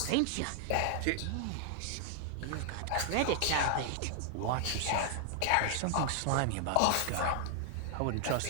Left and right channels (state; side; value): different; both; correlation 0.00